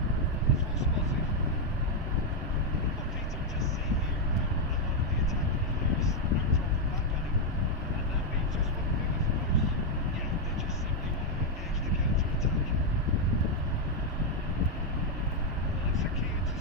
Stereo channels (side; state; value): both; normal; correlation 0.01